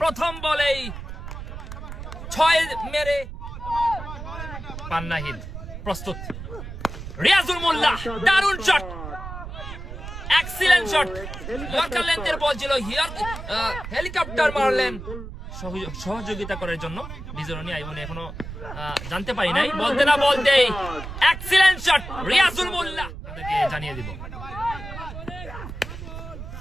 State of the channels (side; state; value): right; noise; rumble, 10 dB below the sound